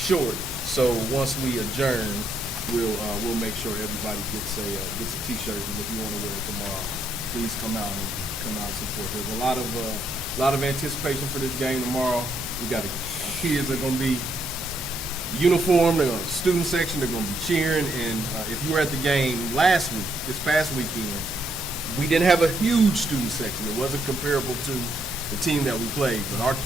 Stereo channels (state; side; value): normal; both; correlation 0.74